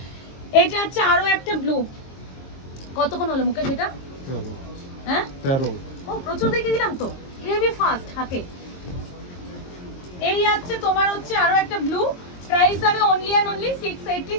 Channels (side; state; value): right; late; 22 ms